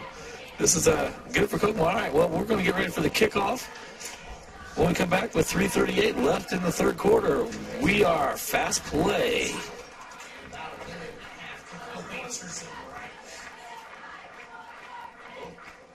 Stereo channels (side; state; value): both; identical; correlation 1.00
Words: this is good for Kokomo. All right, well, we're going to get ready for the kickoff. When we come back with 3:38 left in the third quarter, we are Fast Play.